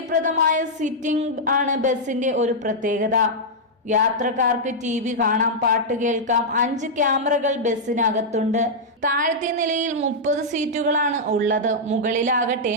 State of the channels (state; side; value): normal; both; correlation -0.06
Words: സിറ്റിംഗ് ആണ് ബസിന്റെ ഒരു പ്രത്യേകത. യാത്രക്കാർക്ക് TV കാണാം, പാട്ട് കേൾക്കാം. 5 ക്യാമറകൾ ബസ്സിനകത്തുണ്ട്. താഴത്തെ നിലയിൽ 30 സീറ്റുകളാണ് ഉള്ളത്. മുകളിലാകട്ടെ